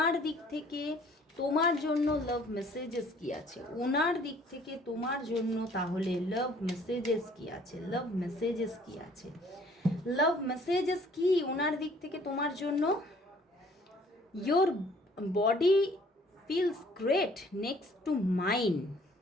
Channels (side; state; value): both; normal; correlation 0.57